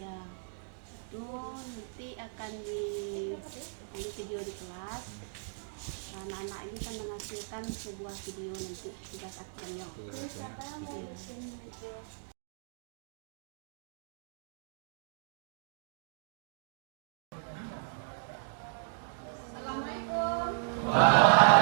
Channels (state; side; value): silent; left; digital silence